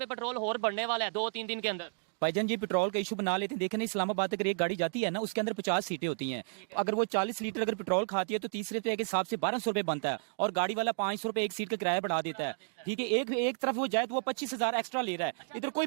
पेट्रोल और बढ़ने वाला है 2-3 दिन के अंदर। भाईजान जी पेट्रोल का इशू बना लेते हैं। देखें ना, इस्लामाबाद अगर एक गाड़ी जाती है ना, उसके अंदर 50 सीटें होती हैं। अगर वो 40 लीटर अगर पेट्रोल खाती है तो 30 रुपए के हिसाब से 1200 रुपए बनता है, और गाड़ी वाला 500 रुपए एक सीट का किराया बढ़ा देता है। ठीक है, एक तरफ वो जाए तो वो 25,000 एक्स्ट्रा ले रहा है, इधर कोई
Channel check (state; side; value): silent; left; digital silence